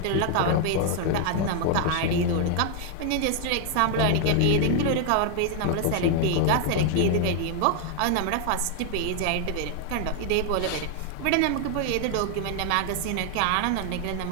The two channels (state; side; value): different; both; correlation 0.00